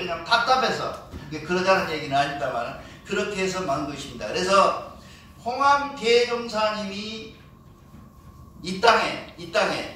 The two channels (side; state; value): both; identical; correlation 1.00